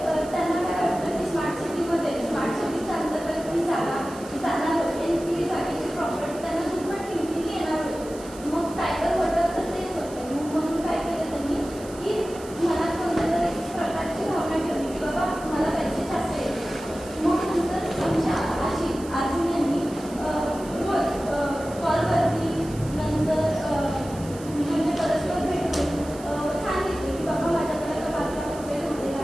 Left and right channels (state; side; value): noise; right; hiss, 18 dB below the sound